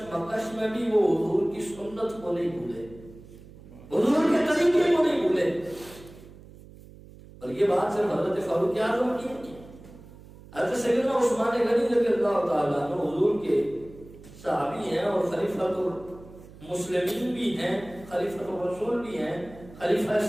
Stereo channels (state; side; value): noise; right; hum, 20 dB below the sound